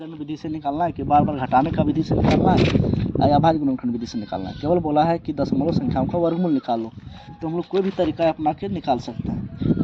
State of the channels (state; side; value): identical; both; correlation 1.00